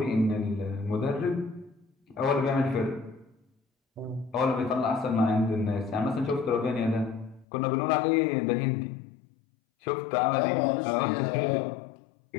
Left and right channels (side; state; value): right; drops out; at 7.5 s